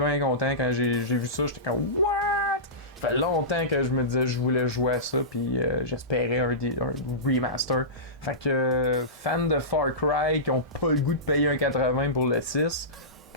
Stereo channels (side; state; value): both; normal; correlation -0.20